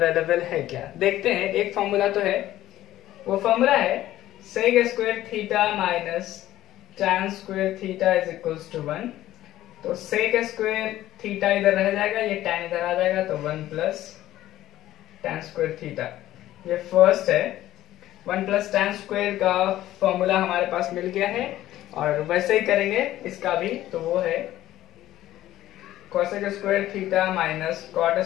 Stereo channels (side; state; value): right; quieter; 14.2 dB